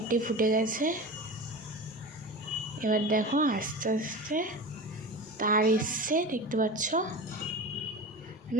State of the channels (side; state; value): both; normal; correlation 0.30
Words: ফুটে গেছে। এবার দেখো আস্তে আস্তে তার এসছে, দেখতে পাচ্ছ।